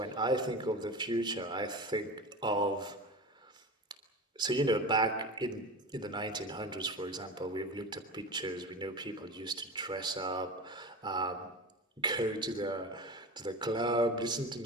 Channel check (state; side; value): normal; both; correlation 0.29